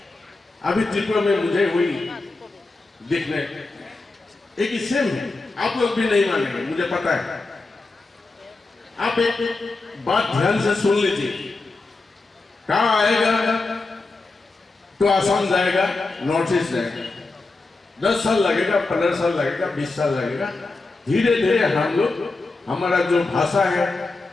अभी त्रिपुरा में मुझे वही दिखने एक सेम है। आप लोग भी नहीं मानेंगे, मुझे पता है। आप एक बात ध्यान से सुन लीजिए, कहां आएगा तो असम जाएगा, नॉर्थ ईस्ट जाएगा, 10 साल लगेगा, 15 साल लगेगा, 20 साल लगेगा, धीरे धीरे हम लोग, हमारा जो भाषा है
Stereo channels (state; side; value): quieter; right; 3.5 dB